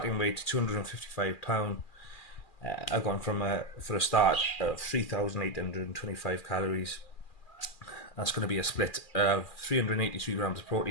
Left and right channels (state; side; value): late; right; 2.4 ms